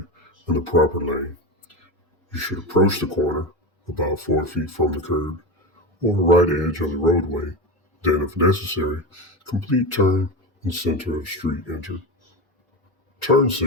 the proper lane. You should approach the corner about 4 feet from the curb or the right edge of the roadway. Then, if necessary, complete turn in center of street enter. Turn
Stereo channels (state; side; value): normal; both; correlation 0.21